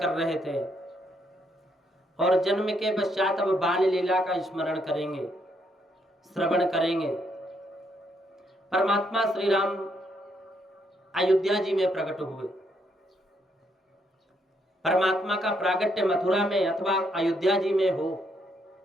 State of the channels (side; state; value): both; normal; correlation 0.74